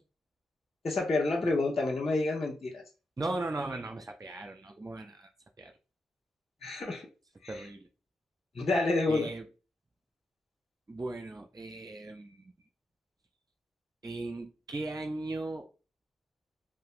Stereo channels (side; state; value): both; normal; correlation 0.85